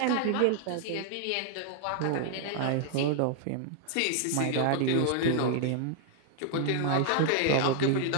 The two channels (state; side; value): different; both; correlation 0.00